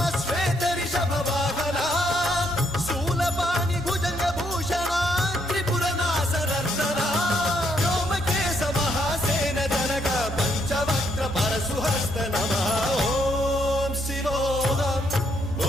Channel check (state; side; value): normal; both; correlation 0.73